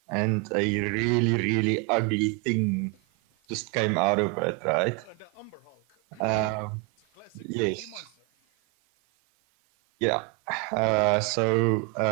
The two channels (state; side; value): quieter; left; 27.5 dB